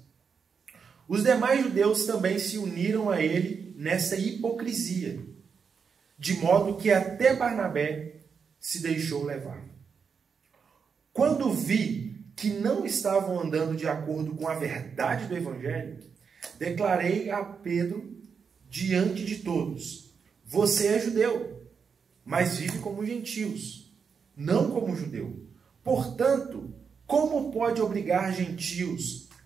Os demais judeus também se uniram a ele nessa hipocrisia, de modo que até Barnabé se deixou levar. Quando vi que não estavam andando de acordo com a verdade do Evangelho, declarei a Pedro diante de todos: você é judeu, mas vive como gentios, não como judeu. Portanto, como pode obrigar gentios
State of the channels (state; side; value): quieter; left; 6.1 dB